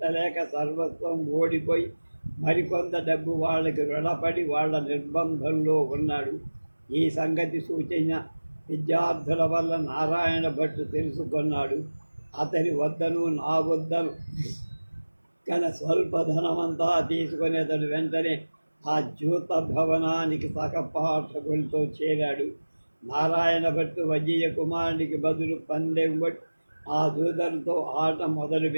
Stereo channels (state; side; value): inverted; both; correlation -1.00